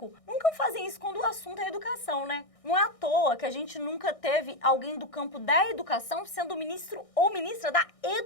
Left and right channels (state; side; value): late; right; 1.6 ms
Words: nunca fazem isso quando o assunto é educação, né? Não é à toa que a gente nunca teve alguém do campo da educação sendo ministro ou ministra da